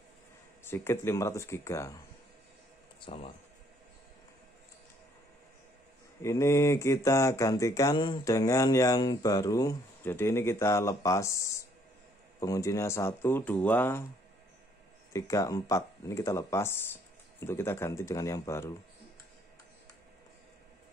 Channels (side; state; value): both; normal; correlation 0.65